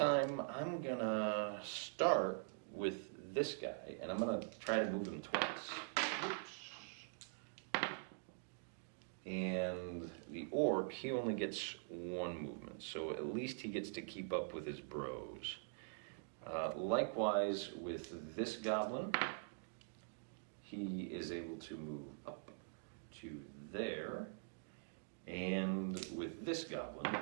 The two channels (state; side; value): silent; left; digital silence